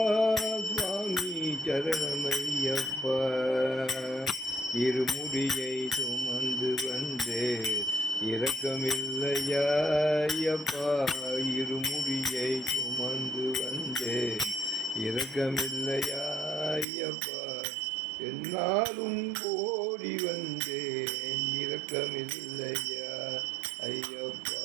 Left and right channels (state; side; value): drops out; left; at 16.9 s